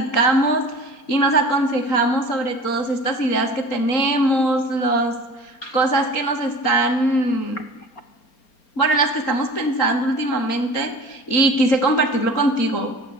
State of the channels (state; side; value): late; right; 4.3 ms